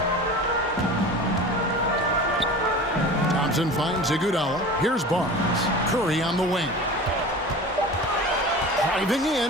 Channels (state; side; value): normal; both; correlation 0.36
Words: Thompson finds Iguodala. Here's Barnes. Curry on the wing. Driving